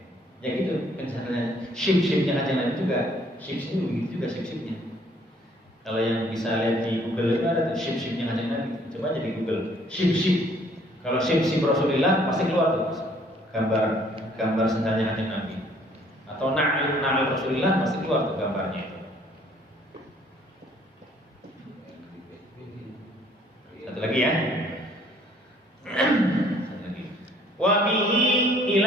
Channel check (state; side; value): normal; both; correlation 0.60